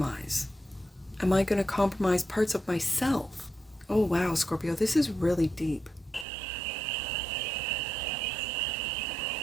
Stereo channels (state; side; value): drops out; left; at 6.2 s